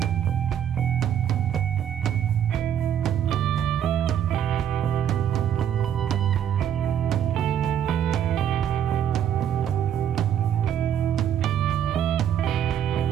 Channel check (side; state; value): left; quieter; 9.5 dB